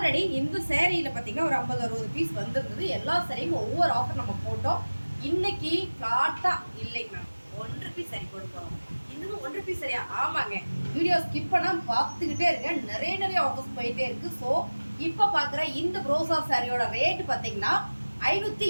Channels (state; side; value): inverted; both; correlation -1.00